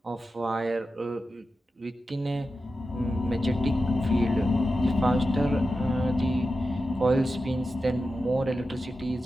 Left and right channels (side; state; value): both; normal; correlation 0.91